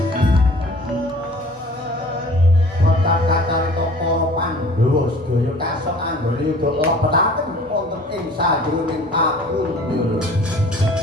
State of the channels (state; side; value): normal; both; correlation 0.48